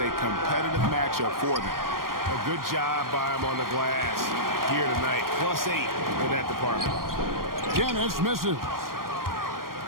competitive matchup for them. A good job by them on the glass here tonight. +8 in that department. Dennis misses.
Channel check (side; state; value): left; late; 0.91 ms